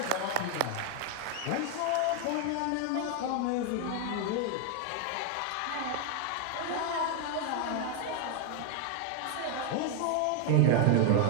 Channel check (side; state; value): both; different; correlation 0.01